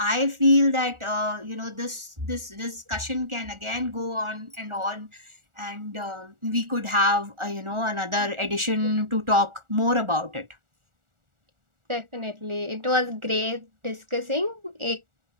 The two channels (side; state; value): left; late; 1.4 ms